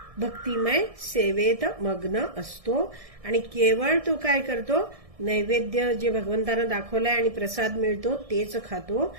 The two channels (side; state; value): left; late; 1.6 ms